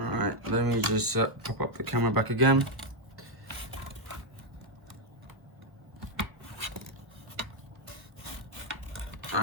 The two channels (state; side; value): late; left; 1.3 ms